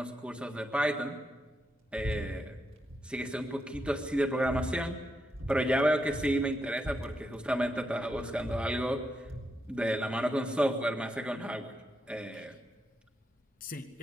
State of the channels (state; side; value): normal; both; correlation 0.82